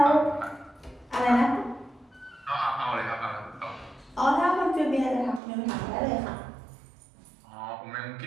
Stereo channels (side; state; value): left; drops out; at 5.4 s